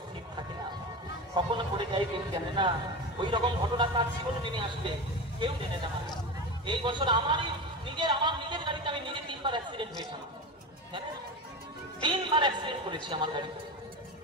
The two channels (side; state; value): both; normal; correlation 0.24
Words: স্থির থাকে না, কখনো পড়ে যায় কেউ জানে না। ওই রকম ঘটনা তার জীবনে নেমে আসবে, কেউ জানে না। এই বছর আমার নিজের গাড়িতে আমি নিজে 3বার অ্যাক্সিডেন্ট হয়েছিলাম, 3বার অ্যাক্সিডেন্ট করেছি আমার গাড়িতে,